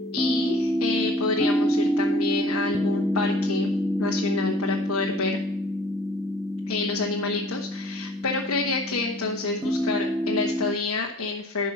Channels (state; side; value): normal; both; correlation 0.51